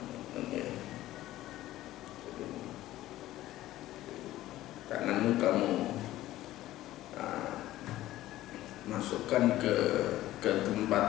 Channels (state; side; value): quieter; right; 15.1 dB